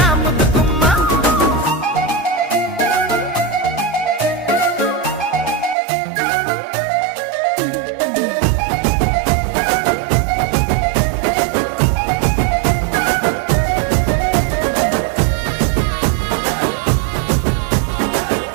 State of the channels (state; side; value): drops out; left; at 5.8 s